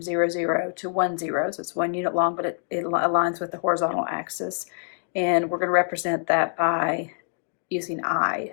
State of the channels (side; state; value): right; silent; digital silence